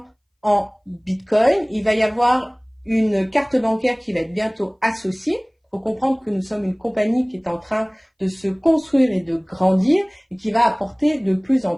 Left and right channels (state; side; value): identical; both; correlation 1.00